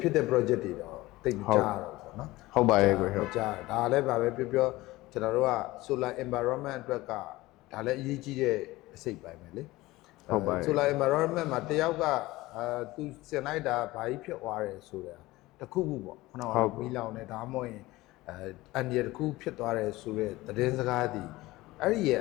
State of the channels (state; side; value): quieter; right; 19.1 dB